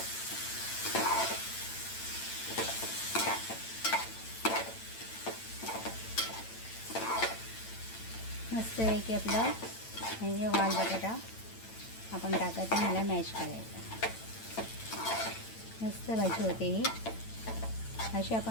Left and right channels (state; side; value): late; right; 8.9 ms